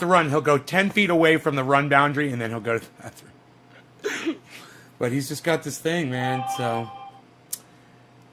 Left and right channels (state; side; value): identical; both; correlation 1.00